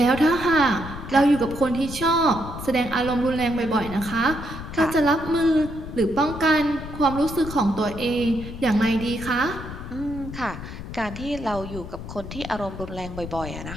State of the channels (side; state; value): left; noise; rumble, 10 dB below the sound